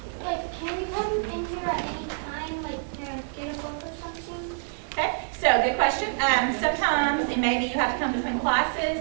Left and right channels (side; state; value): left; silent; 60 dB below the other